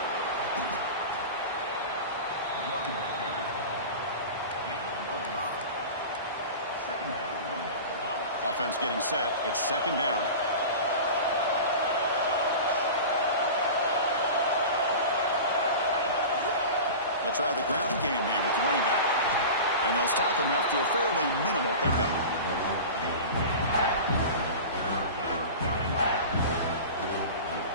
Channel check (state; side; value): inverted; both; correlation -0.32